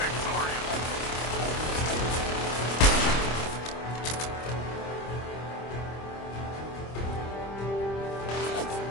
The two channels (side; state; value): right; late; 25 ms